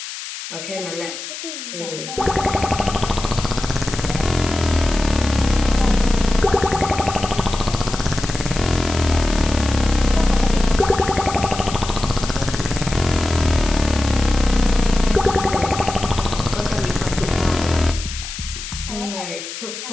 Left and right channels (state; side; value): noise; left; hiss, 9 dB below the sound